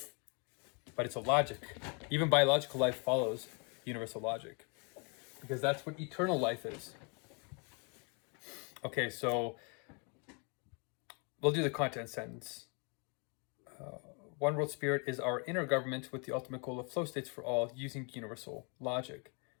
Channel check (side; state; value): right; quieter; 34.8 dB